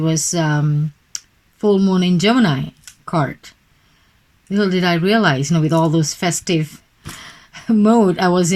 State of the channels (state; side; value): identical; both; correlation 1.00